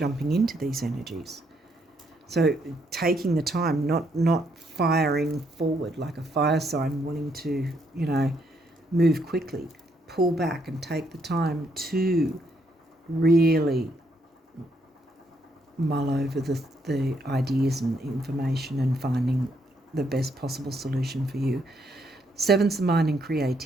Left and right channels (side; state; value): both; normal; correlation 0.74